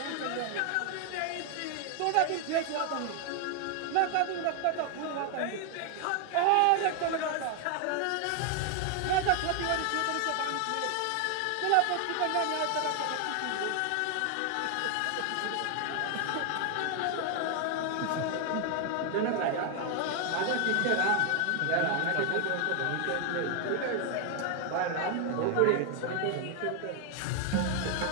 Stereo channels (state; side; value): different; both; correlation 0.00